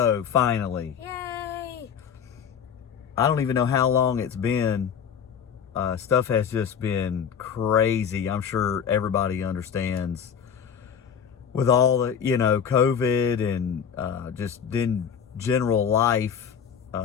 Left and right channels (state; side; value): quieter; right; 7.6 dB